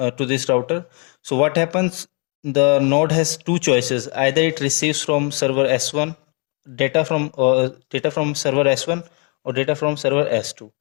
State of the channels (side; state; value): right; quieter; 35.9 dB